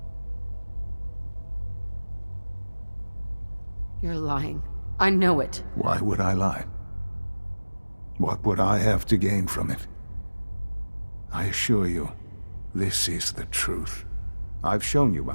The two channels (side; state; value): both; inverted; correlation -1.00